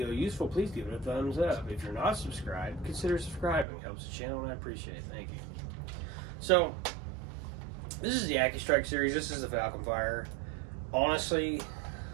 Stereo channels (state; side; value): drops out; left; at 3.7 s